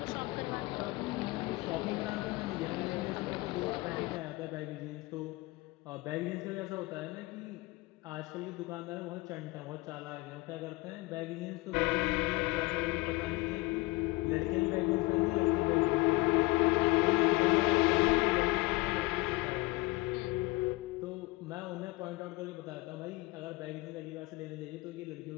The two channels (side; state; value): right; quieter; 21.9 dB